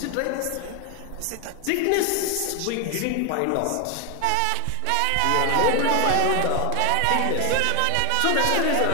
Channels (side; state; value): both; different; correlation 0.01